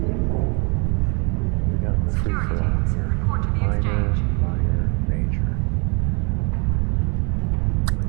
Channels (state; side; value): quieter; left; 33.3 dB